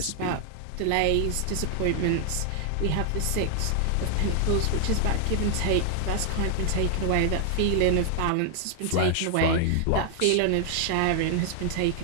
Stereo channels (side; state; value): both; different; correlation 0.00